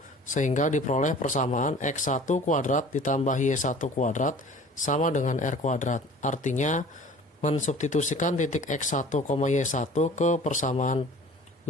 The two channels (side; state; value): both; normal; correlation 0.46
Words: sehingga diperoleh persamaan X1 kuadrat ditambah Y1 kuadrat sama dengan R kuadrat. Artinya mensubstitusikan titik X1, Y1 ke persamaan